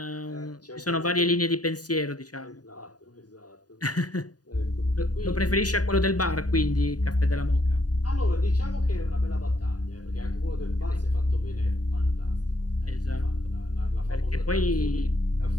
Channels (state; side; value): late; right; 0.68 ms